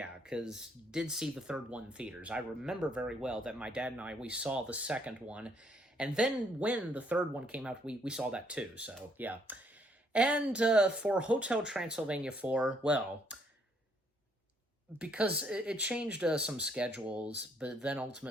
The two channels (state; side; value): normal; both; correlation 0.69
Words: because did see the third one in theaters. I remember very well that my dad and we saw the second one, and then when the third one came out, we saw that too, so yeah. And for Hotel Transylvania 4, well, because it changed some schedules, but then